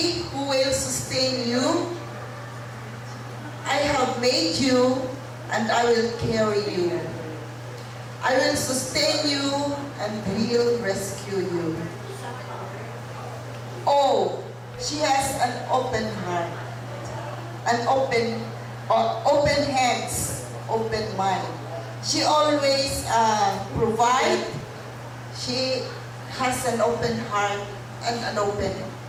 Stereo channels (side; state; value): both; identical; correlation 1.00